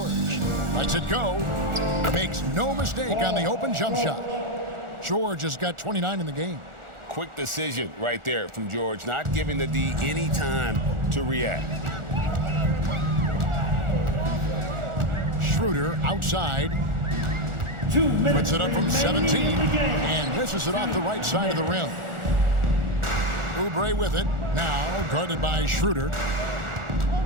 Lets it go. Makes no mistake on the open jump shot. George has got 29 in the game. Quick decision right there from George, not giving the D any time to react. Schroeder outside. Puts it up from 17 and misses it off the right side of the rim. Oubre with it. Now guarded by Schroeder.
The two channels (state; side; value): late; left; 1.4 ms